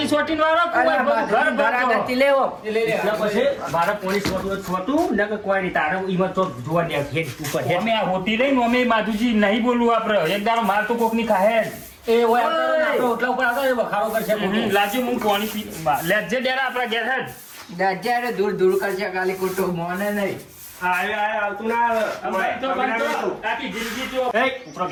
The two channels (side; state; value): both; identical; correlation 1.00